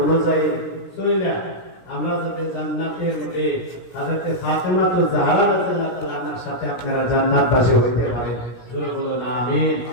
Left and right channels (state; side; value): late; right; 17 ms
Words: চলে আমরা যাতে জান্নাতের মধ্যে হযরত ফাতেমা তো জাহরা রাদিয়াল্লাহু তাআলার সাথে আপনারা জান্নাতবাসী হইতে পারেন। জোরে বলুন আমিন।